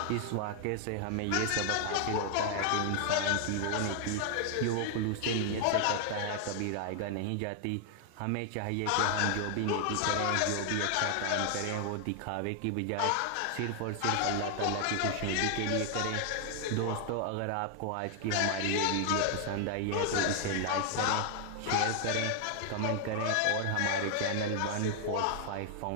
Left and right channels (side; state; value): both; different; correlation 0.00